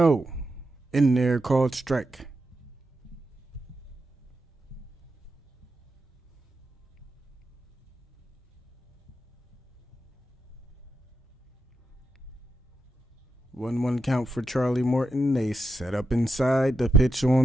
in there, called strike. One count for Charlie Morton. They set up inside. The pitch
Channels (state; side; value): normal; both; correlation 0.85